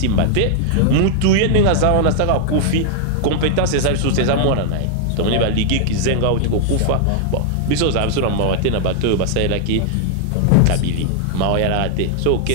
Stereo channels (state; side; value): different; both; correlation 0.00